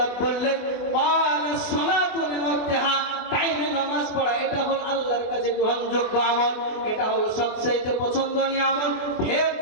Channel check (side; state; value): right; late; 24 ms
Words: বললেন, ক্বালাস সালাতু লিওয়াক্তিহা, টাইমে নামাজ পড়া, এটা হলো আল্লাহর কাছে গ্রহণযোগ্য আমল, এটা হলো সবচেয়ে পছন্দনীয় আমল। ফের